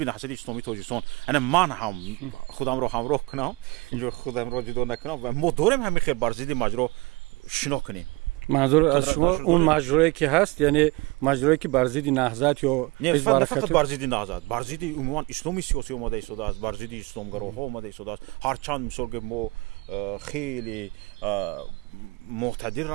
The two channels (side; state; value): left; quieter; 24.2 dB